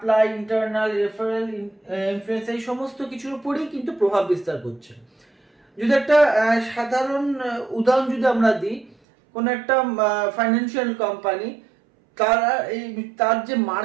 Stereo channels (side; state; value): left; drops out; at 9.0 s